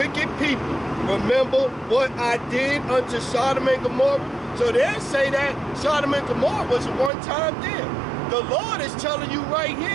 people, remember what I did unto Sodom and Gomorrah? So they say that Sodom and Gomorrah was a one-time deal. The Lord is telling you right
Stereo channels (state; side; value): drops out; left; at 7.1 s